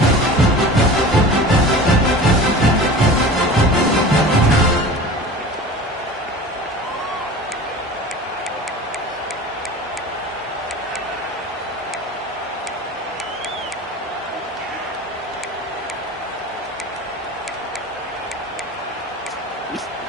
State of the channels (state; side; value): normal; both; correlation 0.37